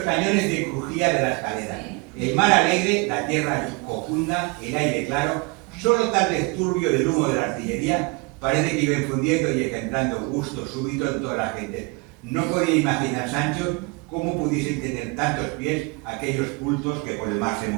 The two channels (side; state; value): left; quieter; 28.0 dB